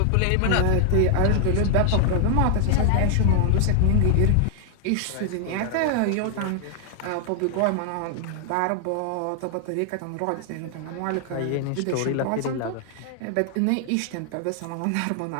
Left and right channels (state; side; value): different; both; correlation 0.00